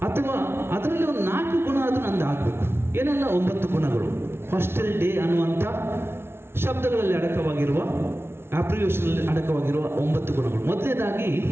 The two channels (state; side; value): late; left; 0.12 ms